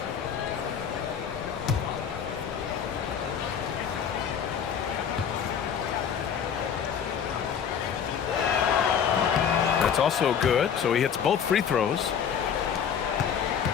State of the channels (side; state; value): right; quieter; 7.8 dB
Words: That's also good, so he hits both free throws.